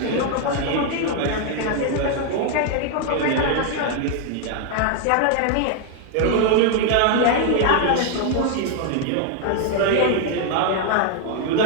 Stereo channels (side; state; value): both; different; correlation 0.00